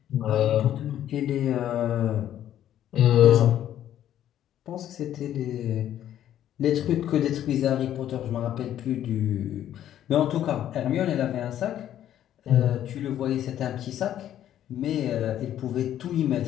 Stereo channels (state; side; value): quieter; right; 11.4 dB